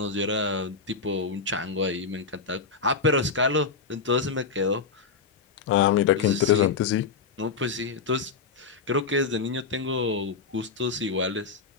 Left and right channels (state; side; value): quieter; right; 4.9 dB